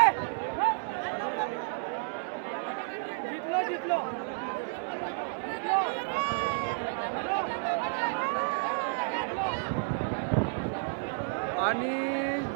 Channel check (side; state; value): left; silent; 57 dB below the other